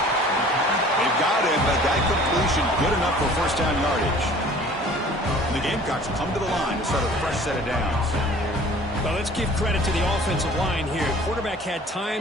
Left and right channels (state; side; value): normal; both; correlation 0.49